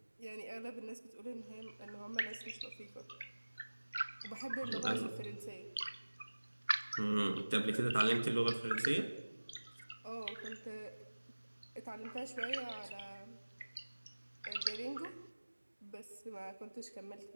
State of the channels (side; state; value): both; inverted; correlation -1.00